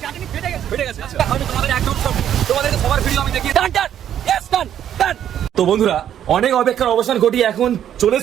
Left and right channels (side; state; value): left; quieter; 10.2 dB